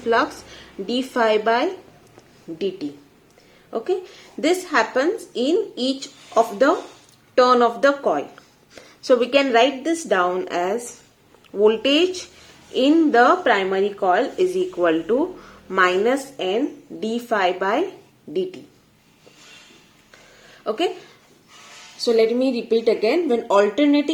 flux? d phi by dt. Okay, this happens in each of the turn of the coil. So we can write this down as voltage in the primary coil is equal to minus n d phi by dt. Okay, so let me repeat again. When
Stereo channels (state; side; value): identical; both; correlation 1.00